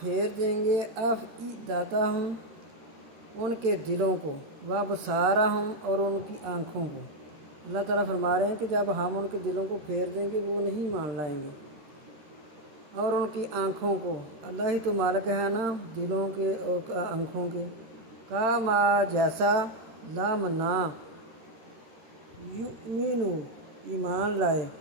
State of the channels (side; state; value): left; late; 13 ms